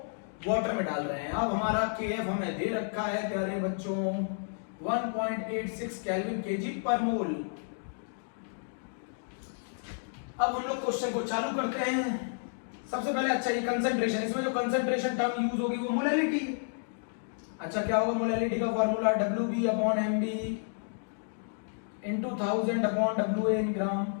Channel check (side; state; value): right; silent; digital silence